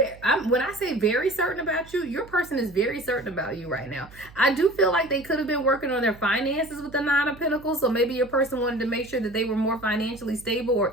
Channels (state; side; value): noise; right; hum, 21 dB below the sound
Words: When I say very certain about you, your person is very certain about you right now. I do feel like they could have been working on their finances with the 9 of Pentacles. So maybe your person wanted to make sure that they were more financially stable or